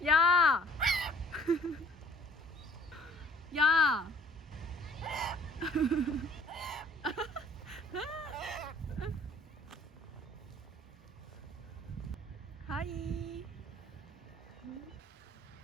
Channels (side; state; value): both; normal; correlation 0.56